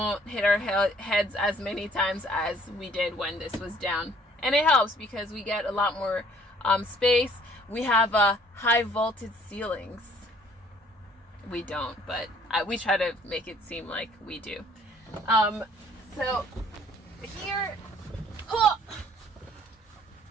hit our heads as many times as we did when this was down. And it helps because we get a lot more space. We have high vaulted ceilings. We don't, but we try to make it seem like we do. So here,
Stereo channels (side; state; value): both; normal; correlation 0.59